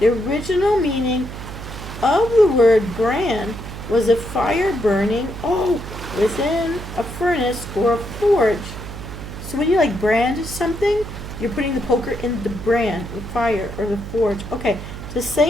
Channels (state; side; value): noise; right; hum, 10 dB below the sound